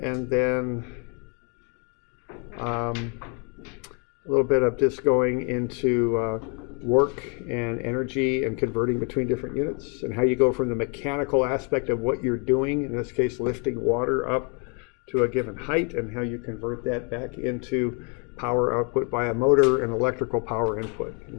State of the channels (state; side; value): quieter; right; 36.0 dB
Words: then a little bit of just going into work and energy and converting between different units, and how you go from the mechanical aspect of what you're doing, in this case lifting water up to a given height, and how you convert that back into power output by a motor and electrical power input.